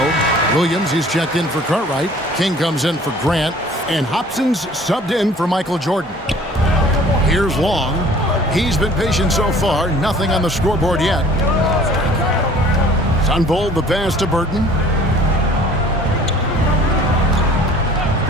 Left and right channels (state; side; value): normal; both; correlation 0.51